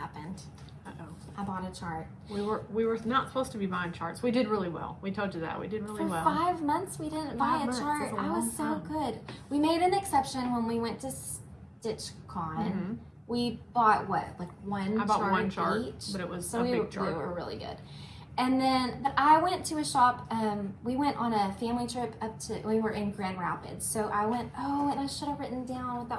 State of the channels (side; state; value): both; identical; correlation 1.00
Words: I bought a chart. We were not supposed to be buying charts. We did really well. We told you that. We did really well. For 5 months we didn't buy a chart. I was so good. We made an exception when we went to StitchCon. We bought what? Like one chart. I bought one chart each. But it was a big chart. We were really good. And then, but I went to a shop, we went on a family trip we were in Grand Rapids. So I went, and I should have written down what